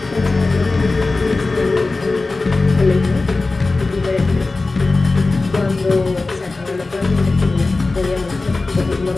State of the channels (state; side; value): quieter; right; 3.5 dB